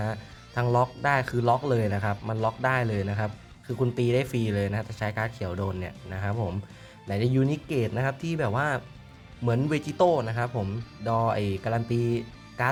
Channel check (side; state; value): both; identical; correlation 1.00